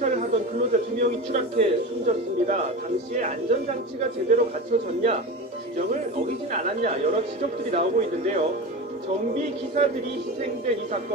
하던 근로자 2명이 추락해 숨졌습니다. 당시에 안전장치가 제대로 갖춰졌냐, 규정을 어기진 않았냐 여러 지적들이 나오고 있는데요. 정비 기사들이 희생된 이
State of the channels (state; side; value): normal; both; correlation 0.27